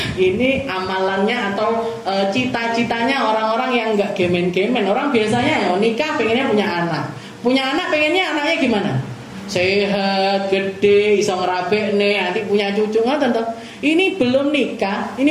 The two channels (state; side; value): identical; both; correlation 1.00